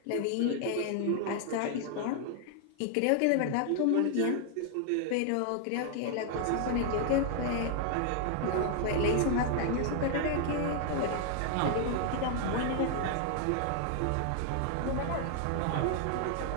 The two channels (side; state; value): both; different; correlation 0.00